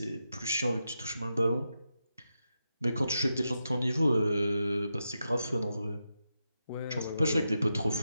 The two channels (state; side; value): inverted; both; correlation -0.87